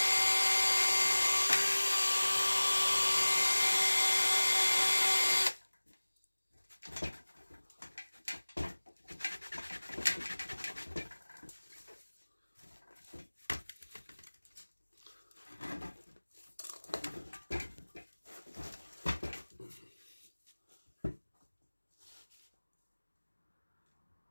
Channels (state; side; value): inverted; both; correlation -1.00